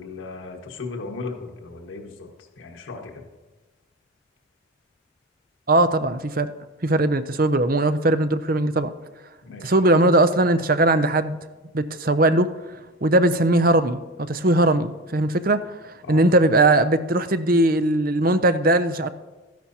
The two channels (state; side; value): normal; both; correlation 0.24